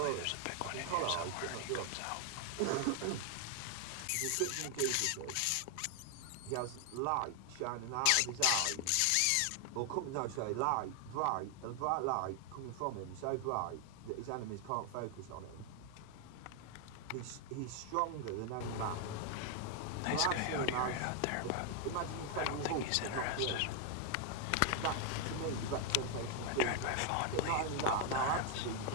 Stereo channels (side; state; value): both; different; correlation 0.00